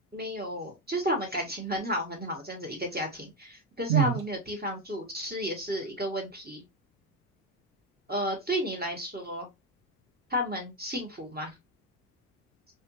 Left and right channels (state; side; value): normal; both; correlation 0.10